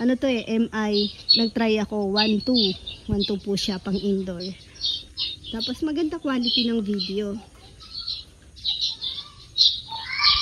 Ano to MI, nagtry ako 1.2. 1.2 po siya pang indoor. Tapos maganda quality ng video.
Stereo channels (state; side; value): identical; both; correlation 1.00